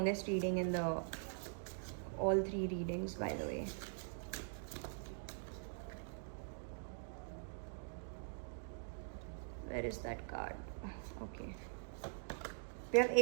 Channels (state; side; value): silent; left; digital silence